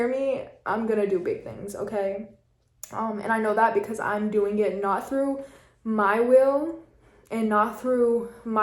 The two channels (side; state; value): both; identical; correlation 1.00